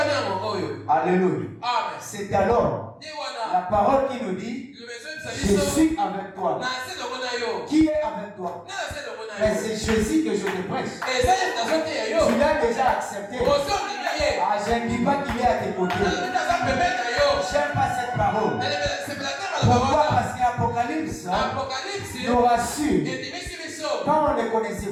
Alléluia. C'est alors la parole qui nous dit, je suis avec toi. Qui est avec toi? Mais c'est Jésus que je te prêche. Tu l'as déjà accepté. Ah, je ne dis pas qu'il est à tes côtés. J'aime pas cette parole. Pourquoi? Parce qu'Apocalypse nous rassure. Quand on ne le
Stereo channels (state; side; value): identical; both; correlation 1.00